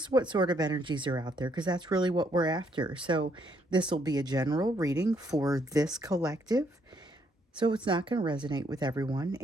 what sort of energies are out there because that's really what we're after. So, this will be a general reading for this collective. So, it's not going to resonate with everyone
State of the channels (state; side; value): normal; both; correlation 0.71